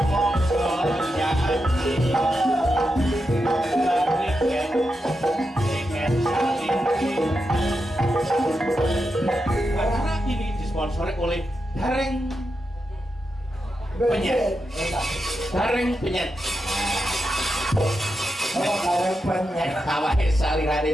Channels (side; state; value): both; normal; correlation 0.87